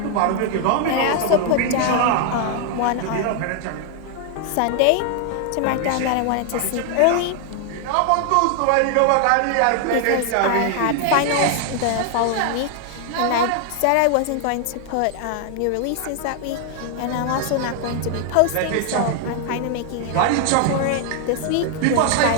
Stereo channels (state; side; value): different; both; correlation 0.00